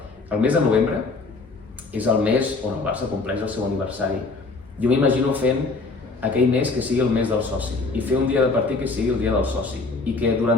El mes de novembre és el mes on el Barça compleix el seu aniversari. Jo m'imagino fent aquell mes que sigui el mes del soci i fer un dia de partit que sigui el dia del soci i que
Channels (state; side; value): quieter; right; 3.7 dB